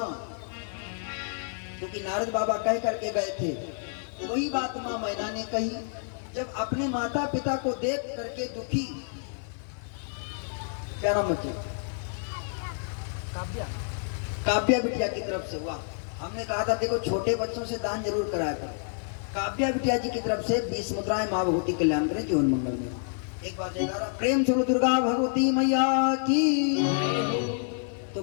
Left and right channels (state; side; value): silent; right; 55 dB below the other